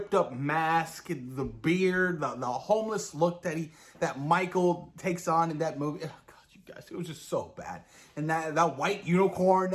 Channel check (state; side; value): identical; both; correlation 1.00